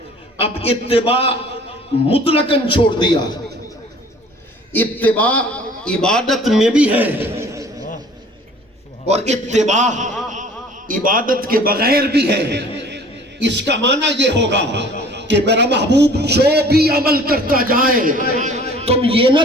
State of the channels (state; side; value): normal; both; correlation 0.50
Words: اب اتباع مطلقاً چھوڑ دیا، اتباع عبادت میں بھی ہے، اور اتباع عبادت کے بغیر بھی ہے۔ اس کا معنی یہ ہوگا کہ میرا محبوب جو بھی عمل کرتا جائے، تم یہ نہ